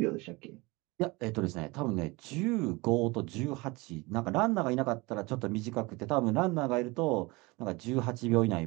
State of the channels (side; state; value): left; quieter; 24.2 dB